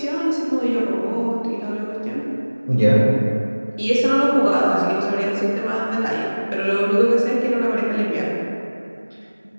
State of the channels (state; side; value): inverted; both; correlation -1.00